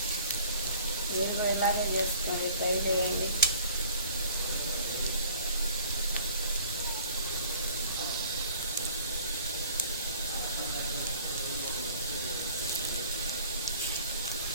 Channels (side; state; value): both; inverted; correlation -0.49